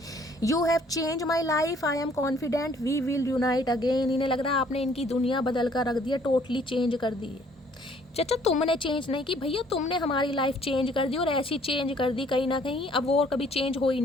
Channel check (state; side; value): normal; both; correlation 0.60